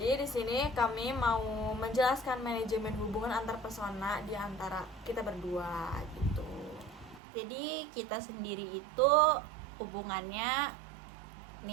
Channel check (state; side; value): drops out; left; at 7.2 s